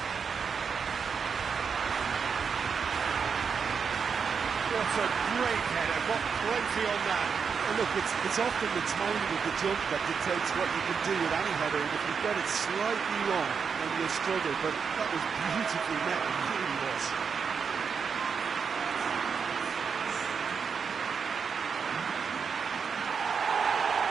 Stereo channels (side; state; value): left; quieter; 6.1 dB